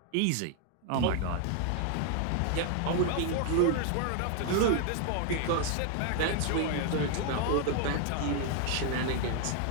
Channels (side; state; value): both; different; correlation 0.00